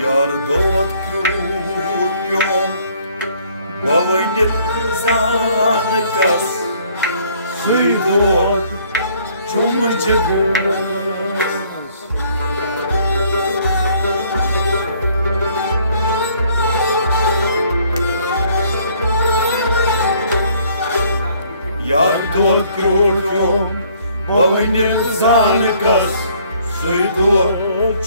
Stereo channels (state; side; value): inverted; both; correlation -0.61